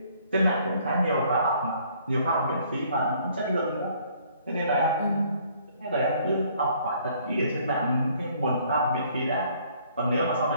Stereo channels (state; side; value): inverted; both; correlation -0.61